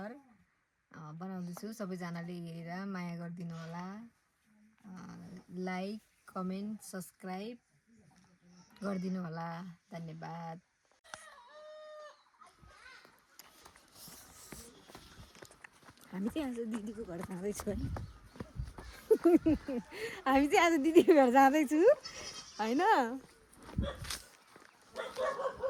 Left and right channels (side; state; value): both; identical; correlation 1.00